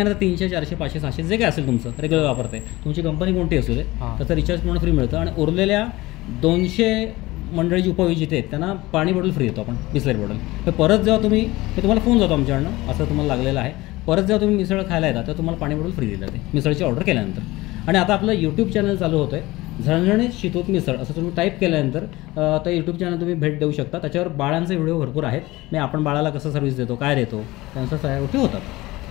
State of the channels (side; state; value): right; quieter; 19.6 dB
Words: 300, 400, 500, 600 जे काय असेल तुमचं रेग्युलर वापरते, तुमची कंपनी कोणती असू दे, त्याचं रिचार्ज पूर्ण फ्री मिळतं. आणि उरलेल्या 200 मंडळी जी उपविजेते आहेत त्यांना पाणी बॉटल फ्री देतो आपण, बिस्लरी बॉटल. तर परत जेव्हा तुम्हाला फोन जातो आमच्याकडनं असं तुम्हाला लागलेलं आहे, परत जेव्हा तुम्ही मिसळ खायला येतात तेव्हा तुम्हाला पाणी बॉटल फ्री दिलं जाते मिसळची ऑर्डर केल्यानंतर. आणि आता आपलं यूट्यूब चॅनल चालू होतं आहे, झणझणीत शितूत मिसळ असं तुम्ही टाईप केल्यानंतर तर यूट्यूब चॅनल तुम्ही भेट देऊ शकता. त्याच्यावर बाळांचे व्हिडिओ भरपूर आहेत. मी आपण बाळाला कसं सर्व्हिस देतो, काय देतो, त्यांच्या सगळ्या गोष्टी